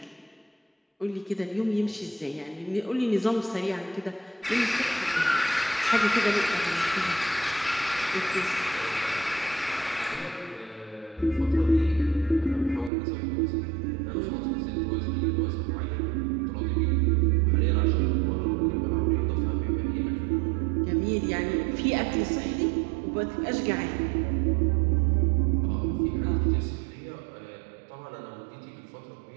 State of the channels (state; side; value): drops out; left; at 12.9 s